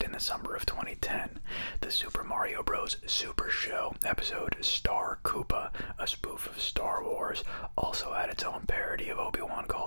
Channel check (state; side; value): inverted; both; correlation -1.00